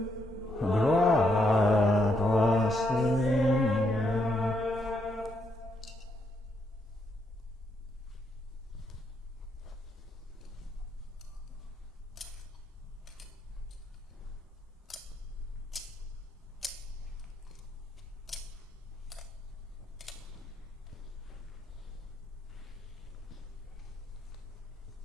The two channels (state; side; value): normal; both; correlation 0.77